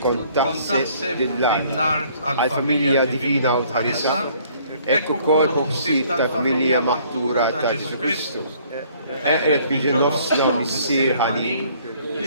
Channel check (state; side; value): inverted; both; correlation -0.60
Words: kont taħseb lill-art għall-familja divina u tħarisa, hekk ukoll ħsieb tal-familja maħtura ta' Ġesu Kristu. Eqret biġi nofsna missier ħanin,